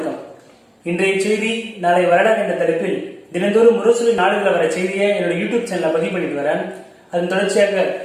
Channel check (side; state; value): both; identical; correlation 1.00